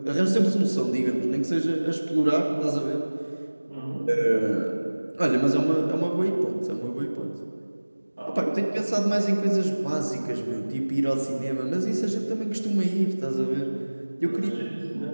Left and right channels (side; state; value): both; inverted; correlation -1.00